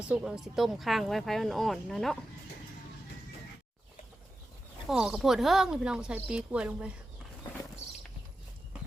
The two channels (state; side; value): normal; both; correlation 0.91